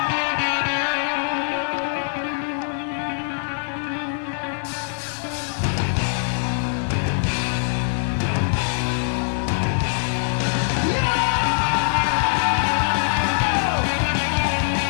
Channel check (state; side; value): silent; right; 64 dB below the other